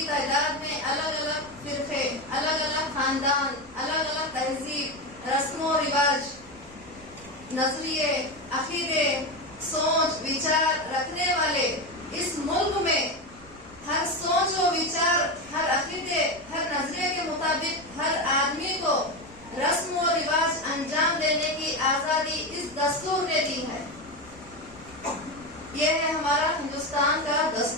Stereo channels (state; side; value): noise; right; rumble, 24 dB below the sound